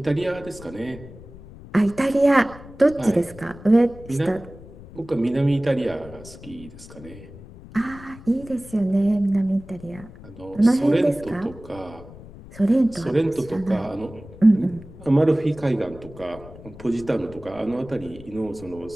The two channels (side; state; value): left; noise; rumble, 18 dB below the sound